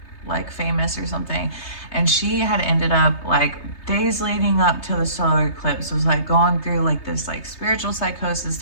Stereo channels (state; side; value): late; right; 3.3 ms